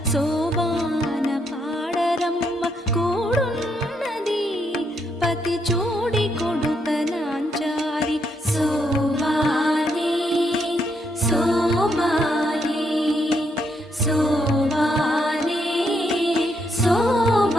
శోభాన పాడరమ్మ కూడున్నది పతి చూడి కొడుక నాంచారి శోభానే శోభానే శోభానే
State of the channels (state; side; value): normal; both; correlation 0.77